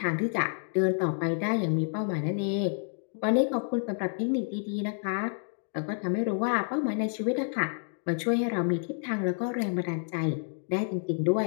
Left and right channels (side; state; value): right; silent; 58 dB below the other